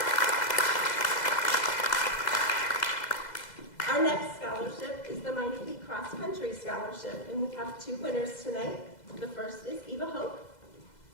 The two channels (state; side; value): late; right; 2.0 ms